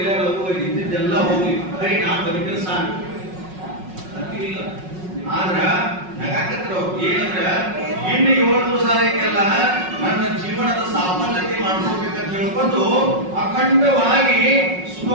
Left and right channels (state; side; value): late; left; 5.4 ms